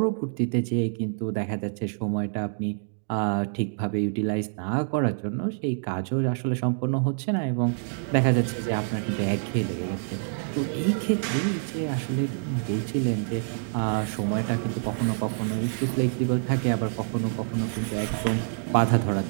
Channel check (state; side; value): silent; left; digital silence